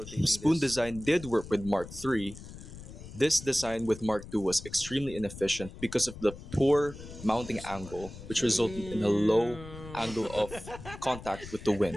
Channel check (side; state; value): left; noise; rumble, 14 dB below the sound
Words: spoon this. design did work with Mark III, this design with Mark II was extremely inefficient because of the poor mounting angle, which resulted in a low angle of contact with the